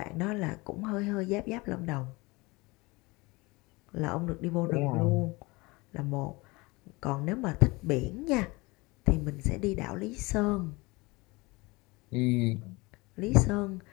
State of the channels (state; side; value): quieter; right; 24.0 dB